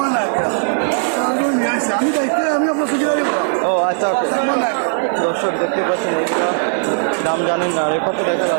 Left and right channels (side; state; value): left; silent; 68 dB below the other